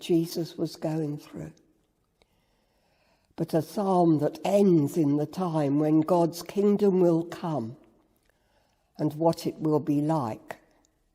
was going through, but a psalm that ends in the time when God's kingdom will come and what it will be like.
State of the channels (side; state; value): both; identical; correlation 1.00